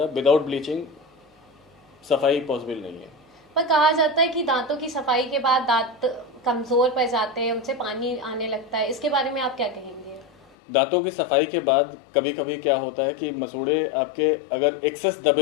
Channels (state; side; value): drops out; right; at 10.6 s